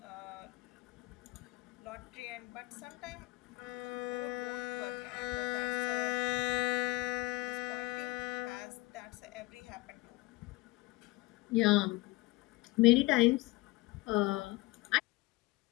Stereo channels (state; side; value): quieter; right; 21.2 dB